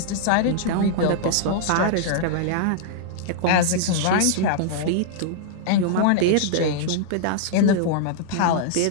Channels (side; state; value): both; different; correlation -0.01